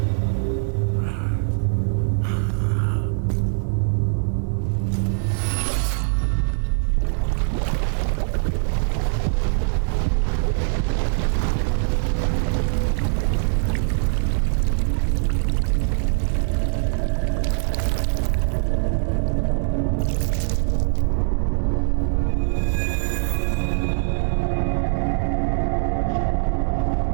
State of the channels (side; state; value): left; silent; digital silence